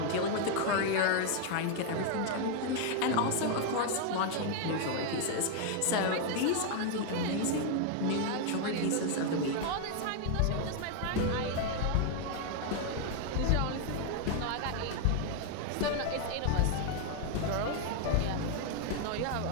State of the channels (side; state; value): both; different; correlation 0.00